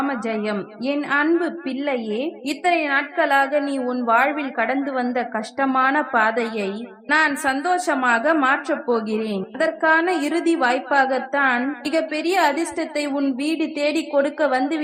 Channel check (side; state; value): both; identical; correlation 1.00